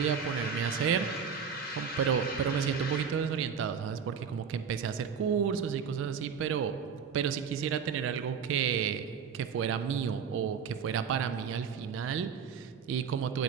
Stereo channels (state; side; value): quieter; left; 6.7 dB